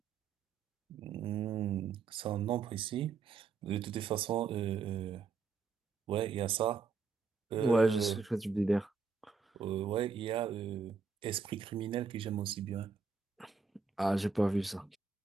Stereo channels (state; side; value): quieter; left; 5.0 dB